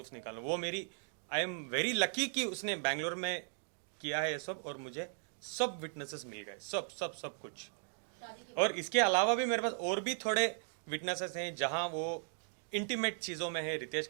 निकाल लूँ। वो मेरी, आई एम वेरी लकी कि उसने बैंगलोर में किया है ये सब, और मुझे सब विटनेसेस मिल गए, सब सब सब कुछ। और इसके अलावा भी मेरे पास और भी थोड़े विटनेसेस हैं जहां वो इंटीमेट चीजों में है रितेश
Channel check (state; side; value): silent; left; 53 dB below the other